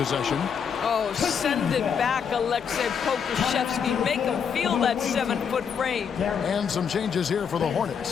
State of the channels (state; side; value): quieter; right; 7.0 dB